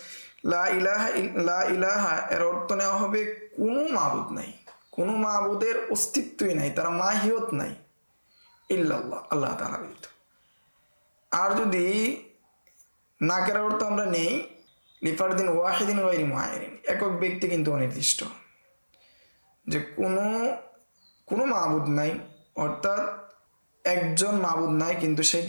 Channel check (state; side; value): inverted; both; correlation -1.00